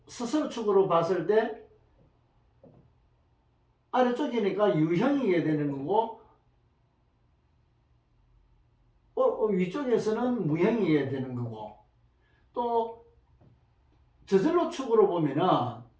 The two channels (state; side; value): identical; both; correlation 1.00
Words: 스스로축으로 봤을 때 아래쪽이니까 유형이게 되는 거고, 위쪽에서는 무형이게 되는 거고, 또 저절로축으로 보면은